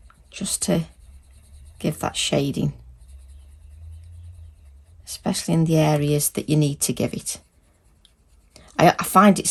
Just to give that shading, especially in the areas that you need to give it. I find it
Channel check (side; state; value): both; identical; correlation 1.00